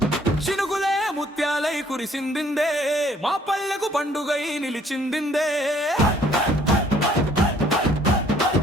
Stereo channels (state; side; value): normal; both; correlation 0.61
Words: చినుకులే ముత్యాలై కురిసిందిందే, మా పల్లెకు పండుగై నిలిచిందిందే.